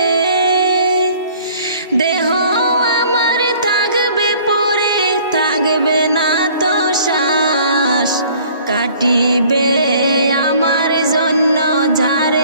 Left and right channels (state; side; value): inverted; both; correlation -0.54